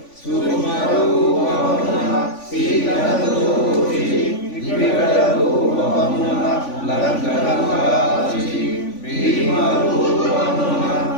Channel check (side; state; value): right; late; 3.5 ms